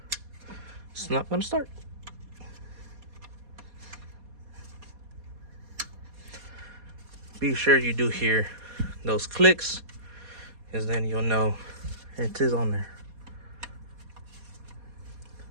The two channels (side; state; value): left; late; 4.2 ms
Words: it's not gonna start. Be sure you do hear those clicks, because then you'll know it is on there.